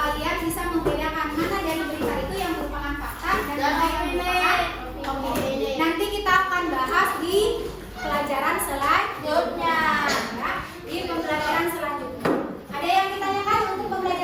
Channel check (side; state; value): both; identical; correlation 1.00